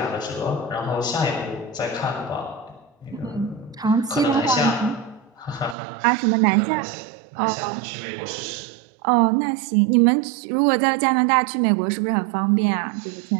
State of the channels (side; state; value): left; drops out; at 5.8 s